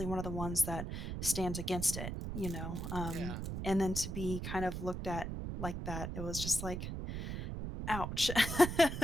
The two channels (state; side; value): noise; right; rumble, 4 dB below the sound